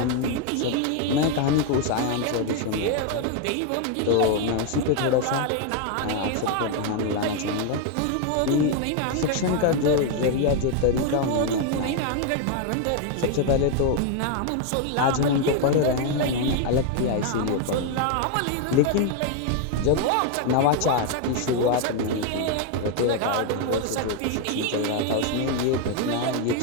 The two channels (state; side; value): different; both; correlation 0.01